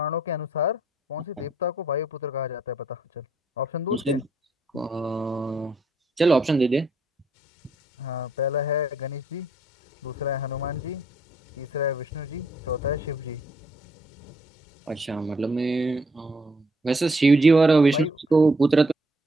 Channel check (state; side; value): normal; both; correlation 0.70